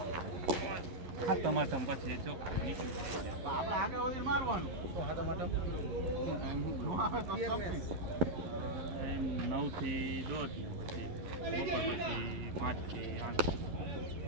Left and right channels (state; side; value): late; left; 11 ms